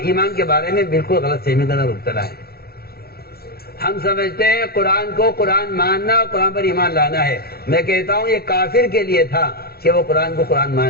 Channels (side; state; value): right; late; 0.45 ms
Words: ایمان کے بارے میں بالکل غلط فہمی کا مبتلا ہے. ہم سمجھتے ہیں قرآن کو قرآن ماننا اور قرآن پر ایمان لانا ہے. میں کہتا ہوں یہ کافر کے لیے تھا کہ وہ قرآن کو قرآن